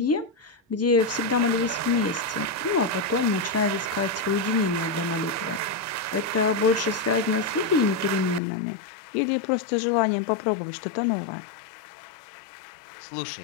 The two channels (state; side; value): drops out; right; at 8.4 s